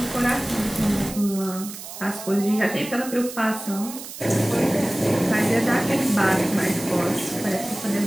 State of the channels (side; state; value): right; noise; hiss, 12 dB below the sound